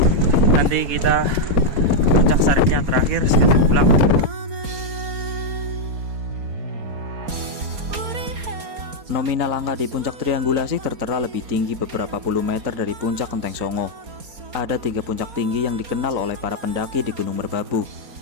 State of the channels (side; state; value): left; late; 4.3 ms